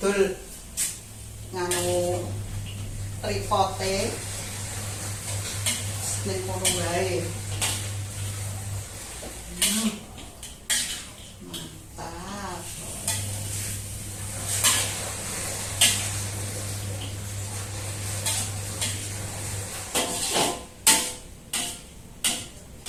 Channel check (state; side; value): identical; both; correlation 1.00